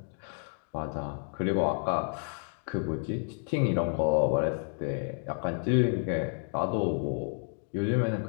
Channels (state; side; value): silent; right; 57 dB below the other